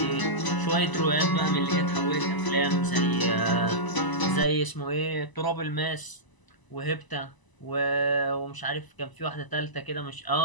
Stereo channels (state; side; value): late; right; 1.0 ms